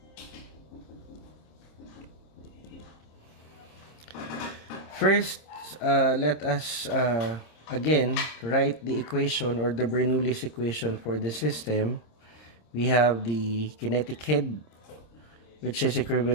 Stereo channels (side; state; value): right; late; 26 ms